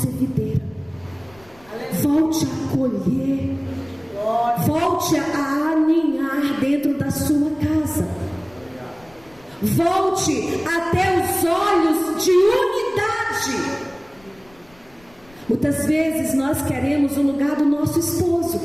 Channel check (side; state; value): left; noise; rumble, 28 dB below the sound